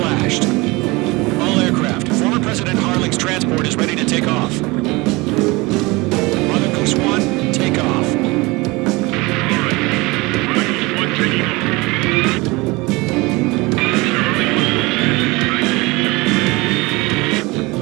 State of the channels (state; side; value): quieter; left; 23.6 dB